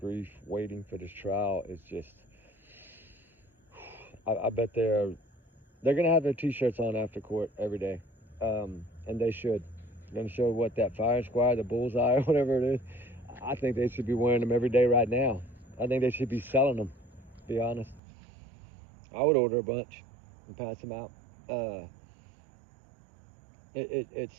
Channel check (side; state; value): left; drops out; at 18.0 s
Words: waiting for this trial is just, I bet they're going to have their t-shirts on after court every day. And they should. They're going to show what that fire squad, the bullseye, or whatever it is. I think they should be wearing them every day right now. I think they should be selling them, to be honest. I would order a bunch and pass them out.